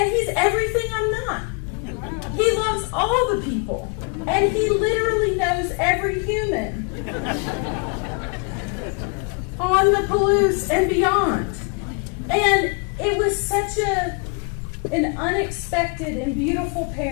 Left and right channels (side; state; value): right; quieter; 34.9 dB